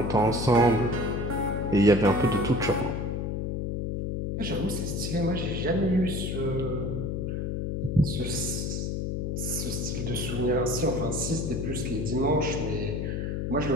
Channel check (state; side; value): noise; left; hum, 2 dB below the sound